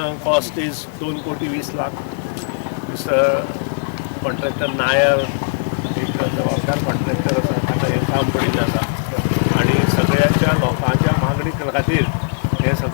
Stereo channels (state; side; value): silent; right; 61 dB below the other